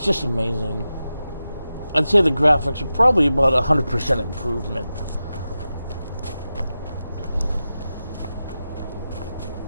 just amazing. I'd say the graphics are probably about 100% improvement.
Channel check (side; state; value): both; inverted; correlation -0.92